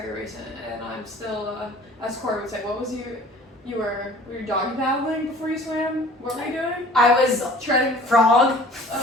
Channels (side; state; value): both; normal; correlation 0.48